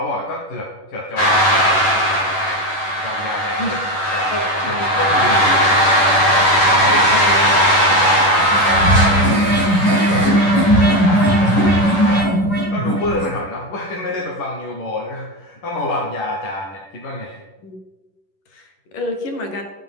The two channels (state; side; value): late; right; 10 ms